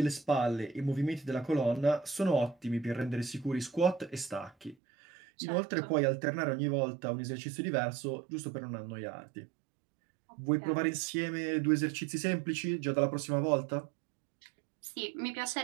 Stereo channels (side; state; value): left; drops out; at 4.8 s